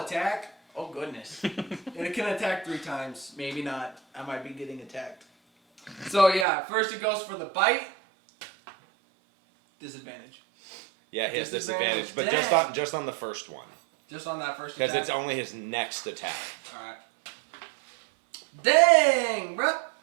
Oh goodness. and it can attack 3 times. Maybe not. I might be getting attacked. So yeah, first it goes for the bite. Disadvantage. Yeah, he has Disadvantage. disadvantage, but Dang. just on the first one. Just on that first Because attack. it's only his next attack. Alright. Dang, bruh!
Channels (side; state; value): left; drops out; at 6.5 s